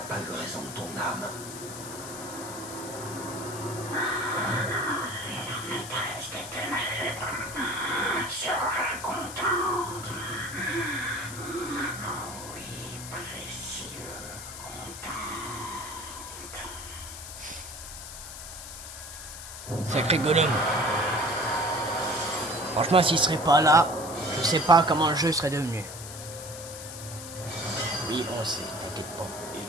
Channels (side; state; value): left; noise; hiss, 11 dB below the sound